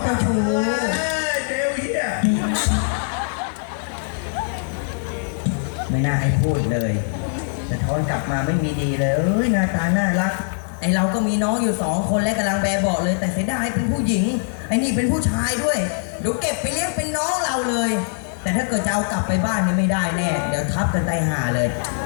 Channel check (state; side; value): silent; right; digital silence